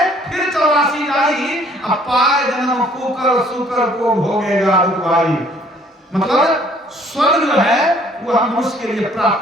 फिर 84 जाई, अब पाए जन्म कुकर सुकर को भोगेगा दुखवाई। मतलब स्वर्ग जो है वो हम मनुष्य के लिए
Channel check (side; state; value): both; normal; correlation 0.59